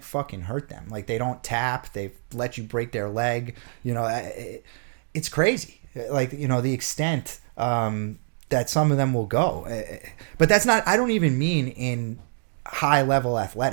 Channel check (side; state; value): left; silent; digital silence